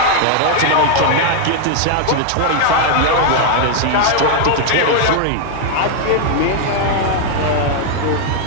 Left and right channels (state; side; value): different; both; correlation 0.00